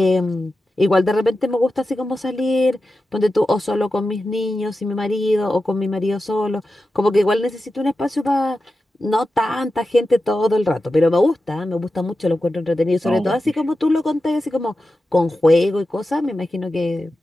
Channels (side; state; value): both; normal; correlation 0.92